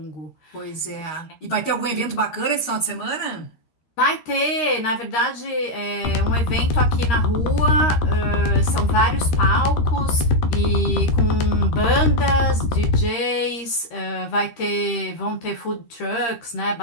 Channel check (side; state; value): right; late; 13 ms